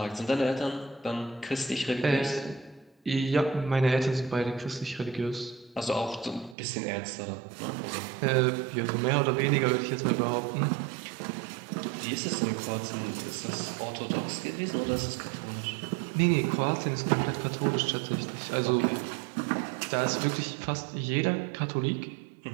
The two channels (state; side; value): drops out; left; at 6.6 s